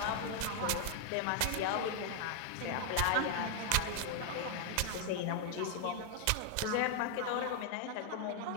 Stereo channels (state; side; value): different; both; correlation 0.00